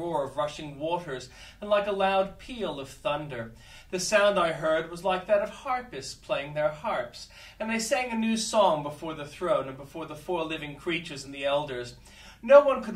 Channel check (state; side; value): identical; both; correlation 1.00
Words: of rushing waters, and like a loud peal of thunder. The sound I heard was like that of harpists playing their harps, and they sang a new song before the throne and before the four living creatures and the elders. No one could